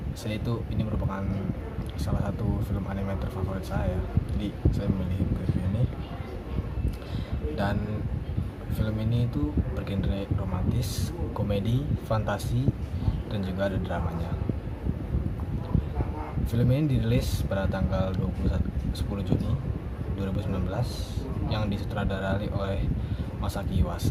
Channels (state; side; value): identical; both; correlation 1.00